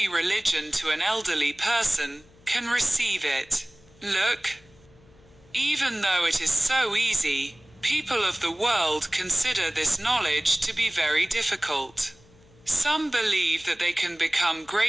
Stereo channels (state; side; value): noise; left; hum, 28 dB below the sound